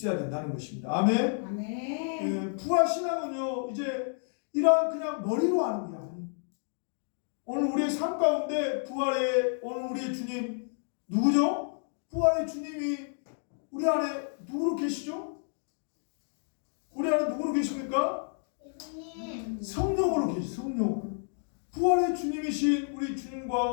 된다는 것입니다. 아멘. 아멘. 부활 신앙은요 이제 이러한 그냥 머리로 하는 게 아니에요. 오늘 우리의 삶 가운데 부활의 오늘 우리의 주님 누구죠? 부활의 주님이 우리 안에 누구로 계시죠? 우리 안에 누구로 계십니까? 성령으로 계시죠. 성령. 부활의 주님이신 우리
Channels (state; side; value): silent; right; 58 dB below the other